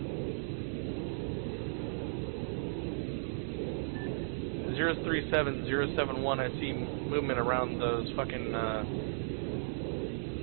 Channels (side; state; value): left; silent; digital silence